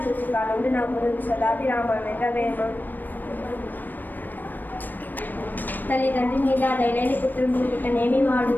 చూసి కాలుండు నవ్వును సదాభిరామ వెంటవేమ తల్లిదండ్రి మీద దయలేని పుత్రుడు పుట్టనేమి వాడు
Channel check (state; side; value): late; right; 0.090 ms